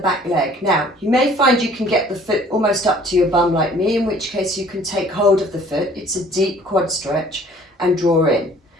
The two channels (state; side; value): normal; both; correlation 0.54